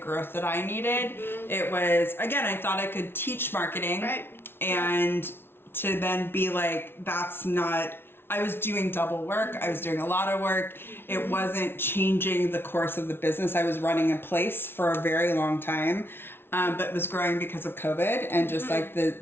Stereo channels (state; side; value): late; right; 0.11 ms